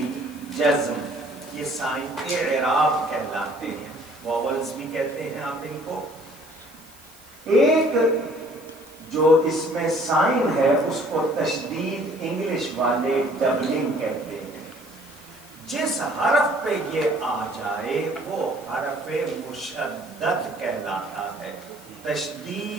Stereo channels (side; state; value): right; noise; hiss, 24 dB below the sound